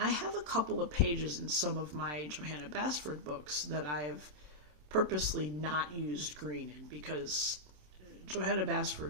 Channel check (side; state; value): left; late; 27 ms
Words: have a couple of pages in some of my Johanna Basford books that I have purposely not used green in, because Johanna